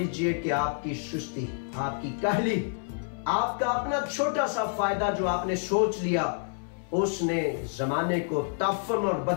कि आपकी सुस्ती, आपकी कहली, आपका अपना छोटा सा फायदा जो आपने सोच लिया, उसने जमाने को तफन और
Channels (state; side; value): silent; right; digital silence